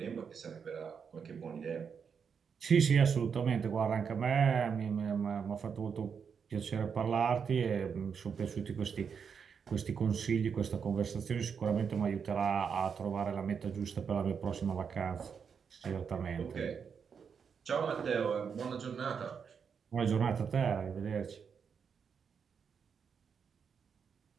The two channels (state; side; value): quieter; left; 6.5 dB